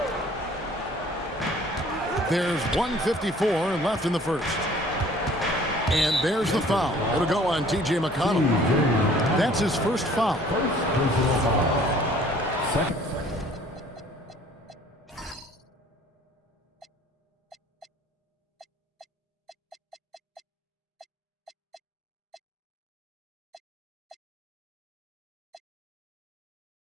There's 1:54 left in the first. And there's the foul. It'll go on T.J. McConnell. That's his first foul. Second.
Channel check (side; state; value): both; normal; correlation 0.54